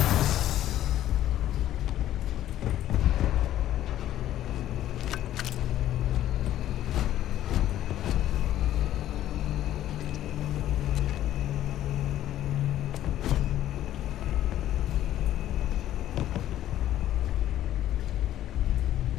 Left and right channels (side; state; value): right; quieter; 12.6 dB